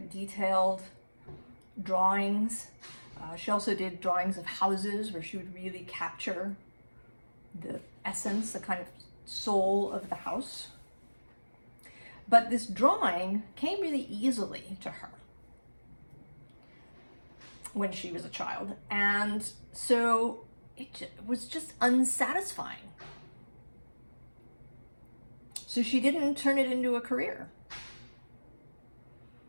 detailed drawings. She also did drawings of houses where she would really capture the essence, the kind of soul of the house. But this drawing came really easily to her when she was a child, and so it was just unsatisfying. So she didn't turn it into a career.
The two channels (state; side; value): inverted; both; correlation -1.00